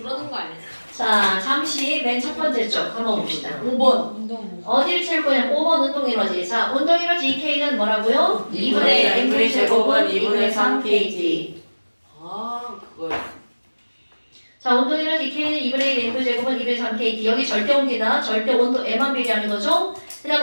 거 아니에요? 자, 잠시 맨 첫 번째 쪽 한번 봅시다. 5번. 운동. 어디를 채울 거냐면 5번 운동에너지. 자, 운동에너지 EK는 뭐라고요? 2분의 mv 제곱은 2분의 3 kg. 아, 그걸. 자, 운동에너지 EK는 2분의 1 mv 제곱은 2분의 3 kg. 여기 절대 온기다. 절대 온도 M만 비례하는 거죠? 그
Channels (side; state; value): both; inverted; correlation -1.00